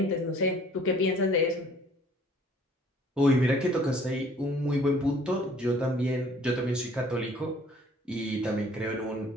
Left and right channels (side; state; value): both; normal; correlation 0.56